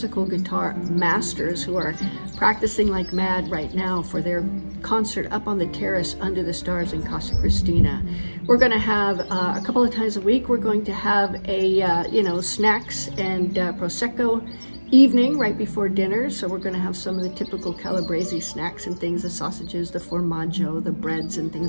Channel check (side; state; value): both; inverted; correlation -1.00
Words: guitar masters who are practicing like mad right now for their concert up on the terrace under the stars in Casa Cristina. We're going to have a couple of times a week, we're going to have a snacks and Prosecco evening right before dinner. So we're going to have some of the typical calabrese snacks and things, the sausages, the formaggio, the breads and